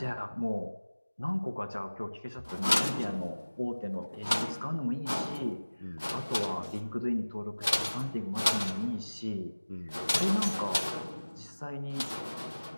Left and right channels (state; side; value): inverted; both; correlation -1.00